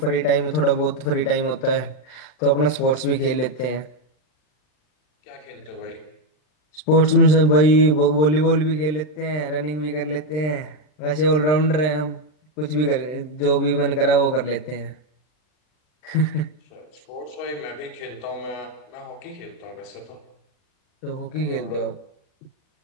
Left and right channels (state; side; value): late; right; 39 ms